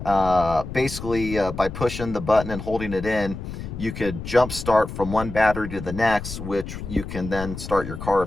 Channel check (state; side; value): noise; left; rumble, 9 dB below the sound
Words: basically by pushing the button and holding it in, you could jump start from one battery to the next, which you can then start your car